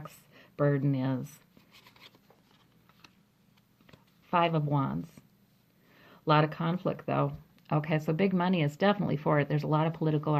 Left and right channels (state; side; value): identical; both; correlation 1.00